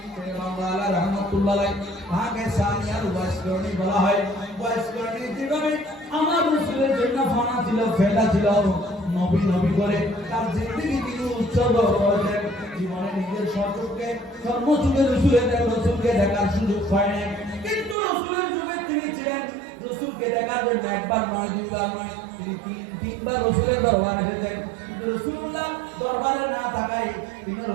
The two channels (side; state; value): left; drops out; at 17.9 s